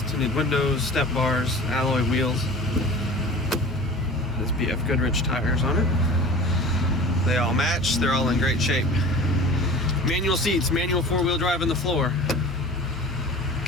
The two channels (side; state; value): both; normal; correlation 0.39